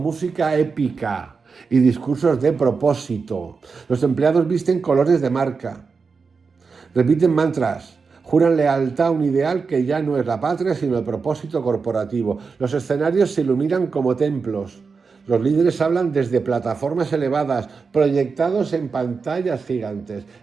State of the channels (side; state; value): left; quieter; 5.0 dB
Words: épica y discursos de propósito. Los empleados visten colores de marca. Repiten mantras, juran lealtad a un ideal que ya no es la patria, sino el propósito corporativo. Los escenarios se iluminan como templos. Los líderes hablan desde plataformas elevadas, proyectados en pantallas gigantes.